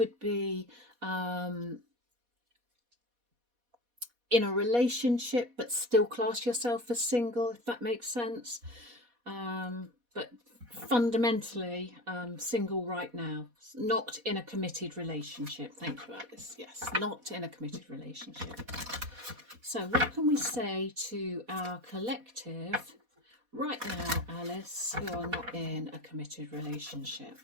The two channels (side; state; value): left; late; 4.1 ms